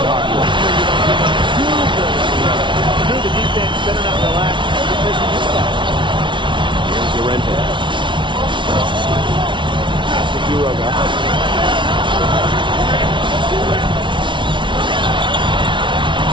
Llorente. Pass to Quiroga.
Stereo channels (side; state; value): left; late; 0.24 ms